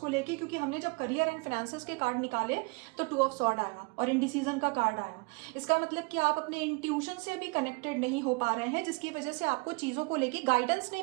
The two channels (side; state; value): left; quieter; 30.6 dB